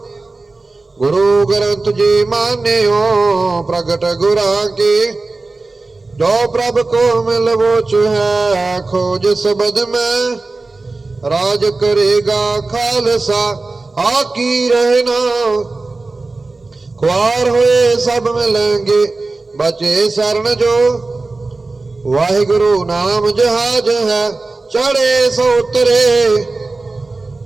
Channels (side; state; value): left; quieter; 3.5 dB